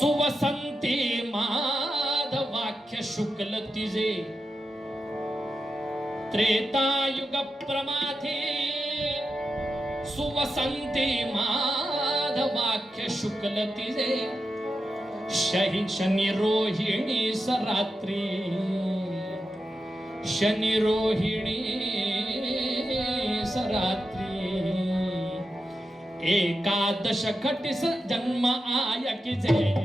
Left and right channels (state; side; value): normal; both; correlation 0.89